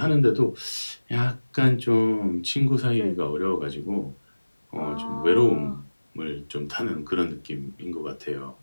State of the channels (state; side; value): inverted; both; correlation -1.00